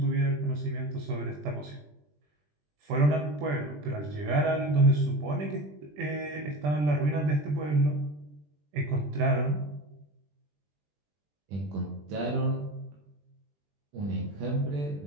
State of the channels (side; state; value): left; late; 20 ms